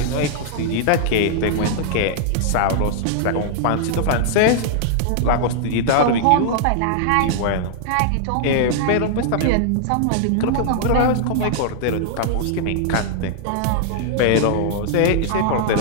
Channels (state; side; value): different; both; correlation -0.01